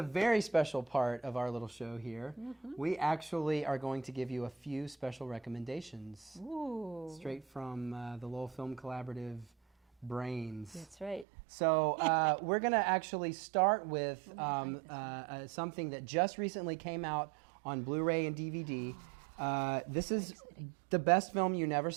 very special part of our little show here. We actually are going to give you a few special recommendations straight from the Lowell Film Collaborative brains. That's right. So we're going to actually start with something that just recently came out on Blu-ray and DVD. This is the best film you never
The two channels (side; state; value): left; drops out; at 11.2 s